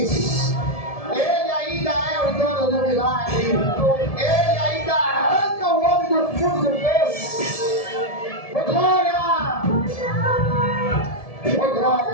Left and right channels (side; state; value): right; late; 1.7 ms